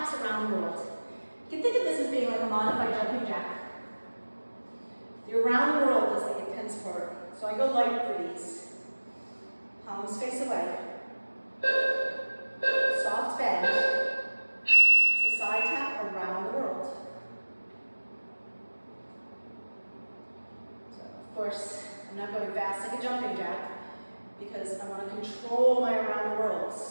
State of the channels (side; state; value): both; inverted; correlation -1.00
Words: around the world. You can think of this as being like a modified jumping jack. The around the world is the intense part. So I go light for these. Palms face away. Soft bend. So side tap around the world. So of course, I'm not going fast like a jumping jack because I want to control my around the